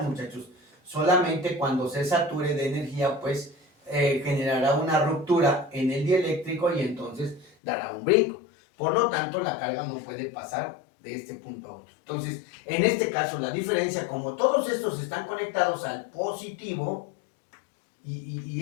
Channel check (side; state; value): right; drops out; at 7.5 s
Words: muchachos. Solamente cuando se sature de energía, pues generará una ruptura en el dieléctrico y entonces dará un brinco. Por lo tanto, la carga no puede pasar de este punto a otro. Entonces, en este caso, la diferencia, como todos estos están conectados al positivo,